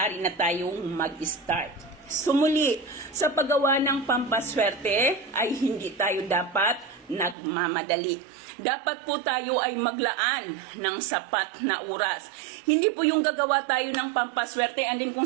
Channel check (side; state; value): left; drops out; at 7.4 s